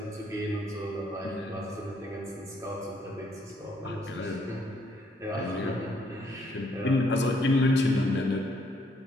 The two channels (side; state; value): both; normal; correlation 0.69